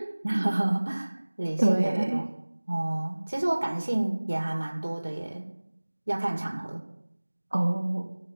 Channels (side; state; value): both; inverted; correlation -1.00